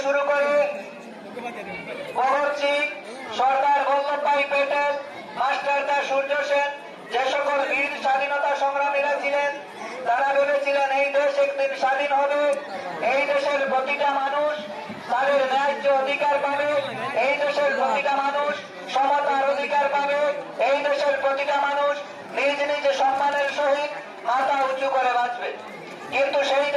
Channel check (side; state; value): both; identical; correlation 1.00